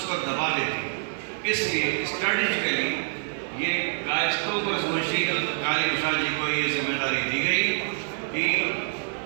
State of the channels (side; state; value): left; silent; 61 dB below the other